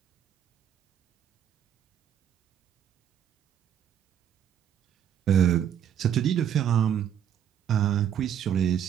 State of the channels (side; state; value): left; quieter; 9.4 dB